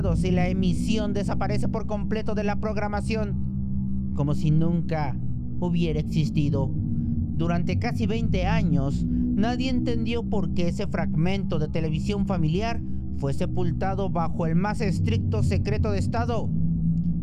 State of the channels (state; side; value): identical; both; correlation 1.00